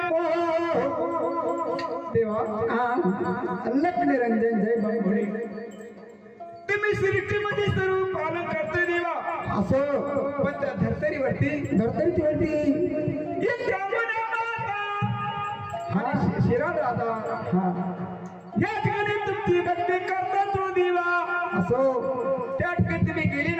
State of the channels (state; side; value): identical; both; correlation 1.00